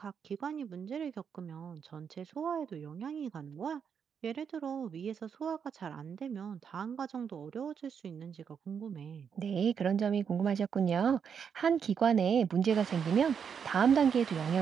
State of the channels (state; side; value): quieter; left; 7.1 dB